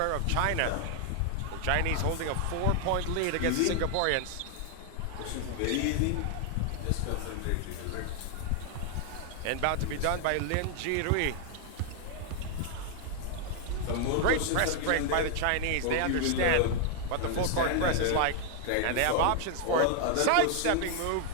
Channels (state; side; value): different; both; correlation 0.00